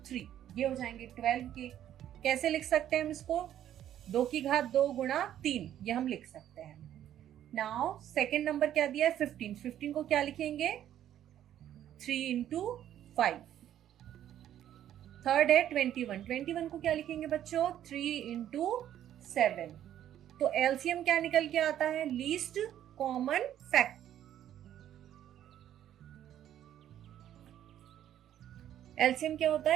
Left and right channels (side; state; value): left; quieter; 11.2 dB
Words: 3, ये हो जाएंगे 12 के। कैसे लिख सकते हैं हम इसको? 2 की घात 2 गुणा 3, ये हम लिख सकते हैं। नाउ सेकेंड नंबर क्या दिया है? 15। 15 को क्या लिखेंगे? 3 इंटू 5। थर्ड है 21। 21 को क्या लिखेंगे बच्चों? 3 इंटू 7। तो एलसीएम क्या निकल के आता है? Least common factor. एलसीएम क्या होता